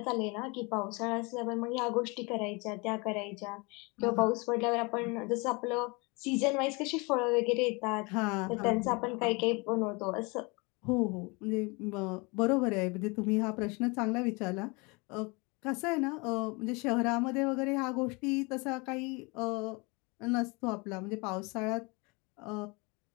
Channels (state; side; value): quieter; right; 28.2 dB